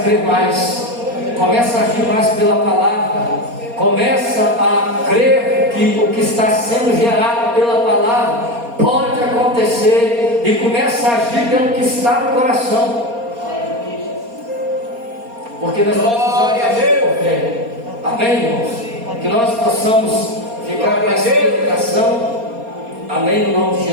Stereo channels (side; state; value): left; late; 4.3 ms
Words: crer mais, começa a agir mais pela palavra, começa a crer que o que está sendo gerado pela palavra pode acontecer, e começa a agir pelo que está no coração, porque nós precisamos agir por fé. Amém, irmãos? Que nós possamos ficar com essa meditação. Amém, no nome de